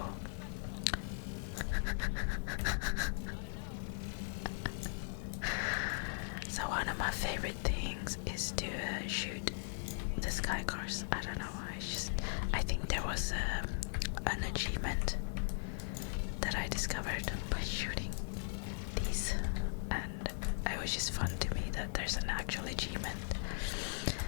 so one of my favorite things is to shoot the Skycars. I don't know why. I think there was an achievement that I discovered by shooting these, and it was just fun to me that there's an actual achievement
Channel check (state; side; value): silent; right; digital silence